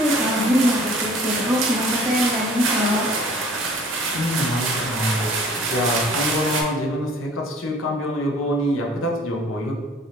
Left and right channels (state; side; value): normal; both; correlation 0.51